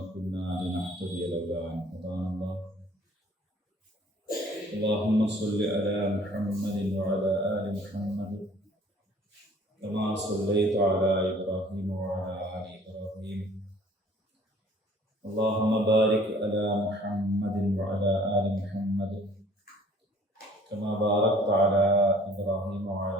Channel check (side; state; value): both; normal; correlation 0.54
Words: كنا لنهتدي لولا أن هدانا الله. اللهم صل على محمد وعلى آل محمد كما صليت على إبراهيم وعلى آل إبراهيم. اللهم بارك على محمد وعلى آل محمد كما باركت على إبراهيم